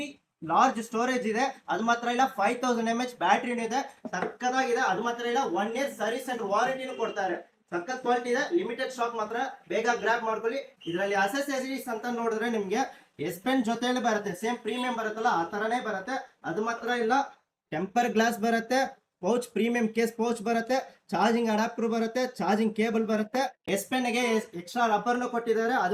ಲಾರ್ಜ್ ಸ್ಟೋರೇಜ್ ಇದೆ. ಅದು ಮಾತ್ರ ಇಲ್ಲ, 5000 mAh ಬ್ಯಾಟ್ರಿನೂ ಇದೆ. ಸಕ್ಕದಾಗಿದೆ. ಅದು ಮಾತ್ರ ಇಲ್ಲ, 1 year ಸರ್ವಿಸ್ ಅಂಡ್ ವಾರಂಟಿನೂ ಕೊಡ್ತಾರೆ. ಸಕ್ಕತ್ ಕ್ವಾಲಿಟಿ ಇದೆ. ಲಿಮಿಟೆಡ್ ಸ್ಟಾಕ್ ಮಾತ್ರ, ಬೇಗ ಗ್ರಾಬ್ ಮಾಡ್ಕೊಳ್ಳಿ. ಇದರಲ್ಲಿ ಅಸೆಸರೀಸ್ ಅಂತ ನೋಡಿದ್ರೆ ನಿಮ್ಗೆ ಎಸ್ ಪೆನ್ ಜೊತೆಯಲ್ಲಿ ಬರುತ್ತೆ. ಸೇಮ್ ಪ್ರೀಮಿಯಂ ಬರುತ್ತಲ್ಲ ಆ ತರನೇ ಬರುತ್ತೆ. ಅದು ಮಾತ್ರ ಇಲ್ಲ, ಟೆಂಪರ್ ಗ್ಲಾಸ್ ಬರುತ್ತೆ, ಪೌಚ್ ಪ್ರೀಮಿಯಂ ಕೇಸ್ ಪೌಚ್ ಬರುತ್ತೆ, ಚಾರ್ಜಿಂಗ್ ಅಡಾಪ್ಟರ್ ಬರುತ್ತೆ, ಚಾರ್ಜಿಂಗ್ ಕೇಬಲ್ ಬರುತ್ತೆ. ಎಸ್ ಪೆನ್ ಗೆ ಎಕ್ಸ್ಟ್ರಾ ರಬ್ಬರ್ನು ಕೊಟ್ಟಿದ್ದಾರೆ.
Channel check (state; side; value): identical; both; correlation 1.00